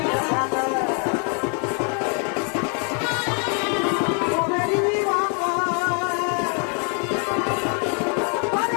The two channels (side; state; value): right; quieter; 38.8 dB